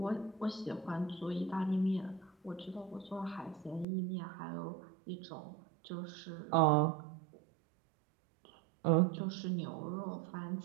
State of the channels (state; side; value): drops out; left; at 3.9 s